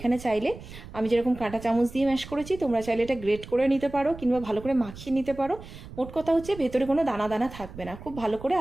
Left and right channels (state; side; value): noise; right; rumble, 15 dB below the sound